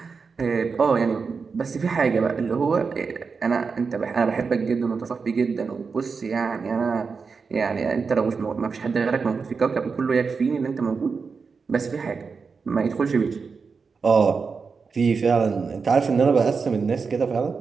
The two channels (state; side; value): quieter; left; 5.1 dB